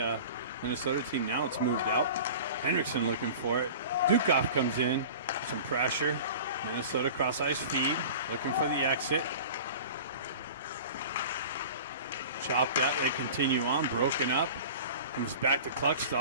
Minnesota team. Now it's moved out. Henriksen looking for it. Dukov comes in. Some pressure. Minnesota cross ice feed. Looking for the exit. Chopped that. They continue on. Broken up. Comes back to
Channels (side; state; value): both; inverted; correlation -0.38